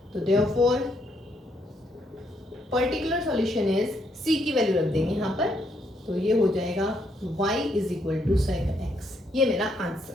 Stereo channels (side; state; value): both; normal; correlation 0.74